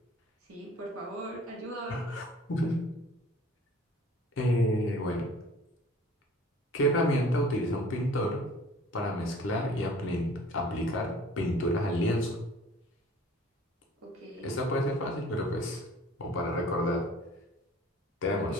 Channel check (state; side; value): normal; both; correlation 0.50